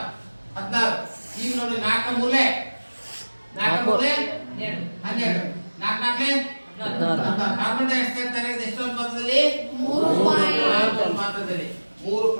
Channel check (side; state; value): both; inverted; correlation -1.00